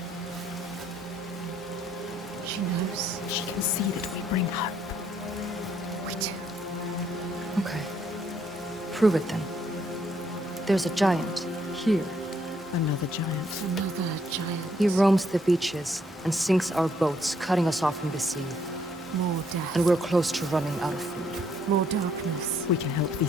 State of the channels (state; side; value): normal; both; correlation 0.70